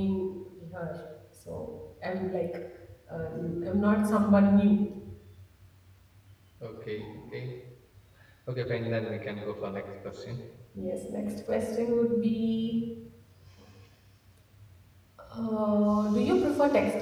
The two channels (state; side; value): identical; both; correlation 1.00